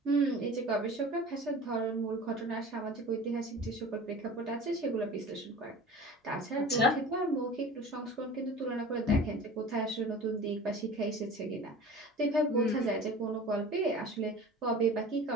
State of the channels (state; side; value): normal; both; correlation 0.39